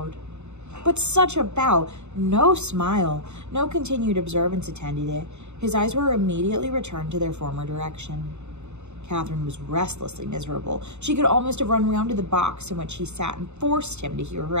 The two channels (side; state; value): left; late; 0.82 ms